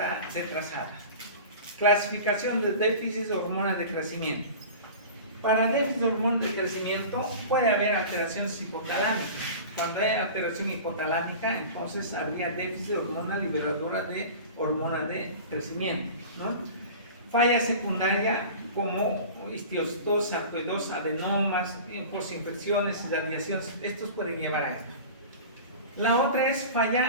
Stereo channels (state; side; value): inverted; both; correlation -0.36